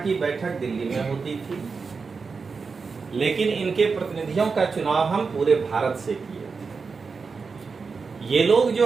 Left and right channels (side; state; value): left; quieter; 4.9 dB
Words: बैठक दिल्ली में होती थी, लेकिन इनके प्रतिनिधियों का चुनाव हम पूरे भारत से किए। ये लोग